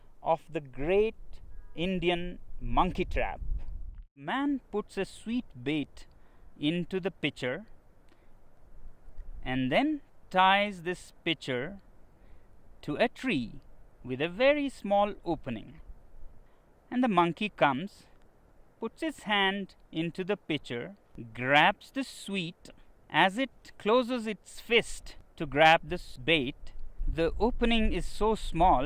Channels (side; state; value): both; identical; correlation 1.00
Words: of the great Indian monkey trap. Man puts a sweet bait into the pitcher and then ties this pitcher to a tree with a very small opening. And the monkey comes, puts his hand into the pitcher, grabs the sweet. As it closes its fist to grab this bait, the opening is so